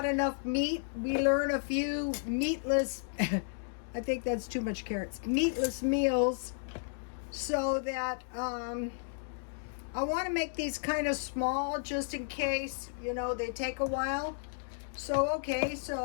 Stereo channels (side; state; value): right; silent; digital silence